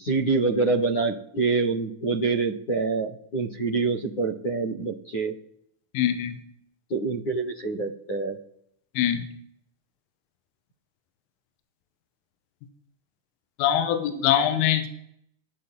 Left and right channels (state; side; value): late; right; 9.7 ms